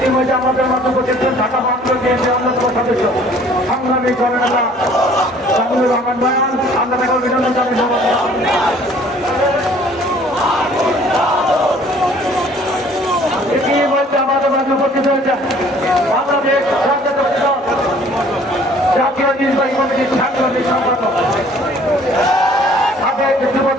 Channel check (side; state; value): both; normal; correlation 0.55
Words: আমাদের মধ্যে উপস্থিত ঢাকা মহানগর বিএনপির অন্যতম সদস্য সংগ্রামী জননেতা জামিলুর রহমান বয়ান, আমরা তাকে অভিনন্দন জানাই। ইতিমধ্যে আমাদের মধ্যে উপস্থিত হয়েছে বাংলাদেশ জাতীয় নির্বাহী কমিটির সাংগঠনিক সম্পাদক, সাবেক